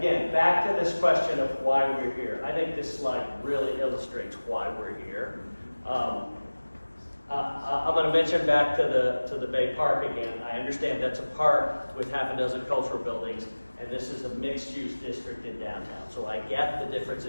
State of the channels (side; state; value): both; inverted; correlation -1.00